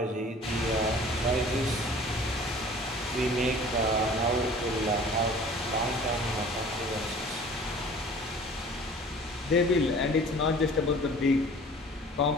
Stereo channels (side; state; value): both; normal; correlation 0.47